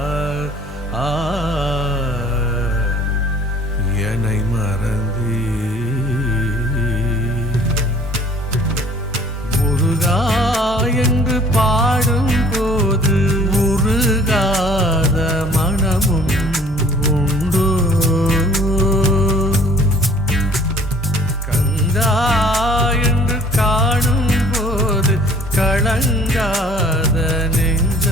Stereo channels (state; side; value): normal; both; correlation 0.53